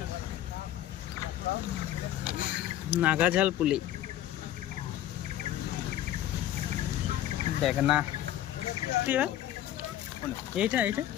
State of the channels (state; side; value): quieter; right; 12.5 dB